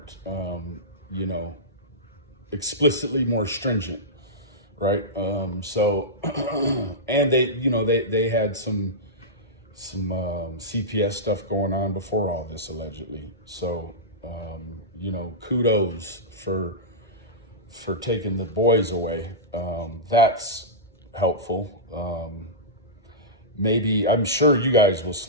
explicitly more stringent, right? So, and they had some CPS stuff going on before all this, allegedly. So, kudos for taking the boys away. That's helpful. Maybe, I'm sure you guys will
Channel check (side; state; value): both; normal; correlation -0.13